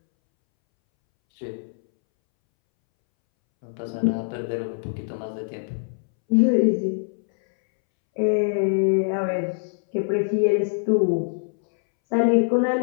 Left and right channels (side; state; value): right; silent; 63 dB below the other